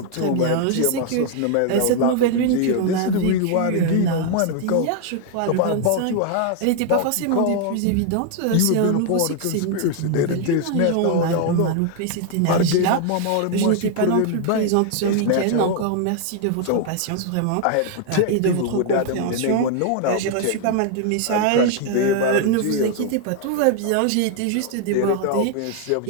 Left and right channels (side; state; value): both; different; correlation 0.00